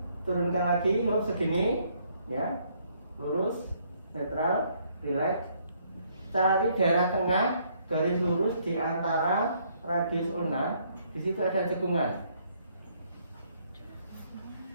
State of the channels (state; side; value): inverted; both; correlation -0.68